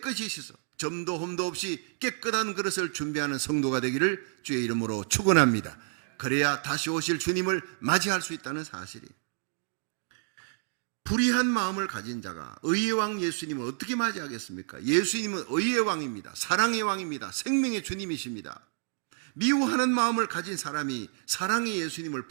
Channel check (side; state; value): left; silent; 55 dB below the other